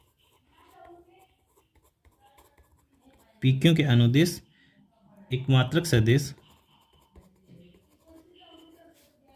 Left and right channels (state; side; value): identical; both; correlation 1.00